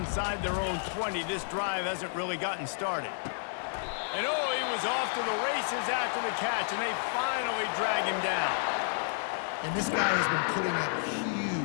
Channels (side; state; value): right; silent; 57 dB below the other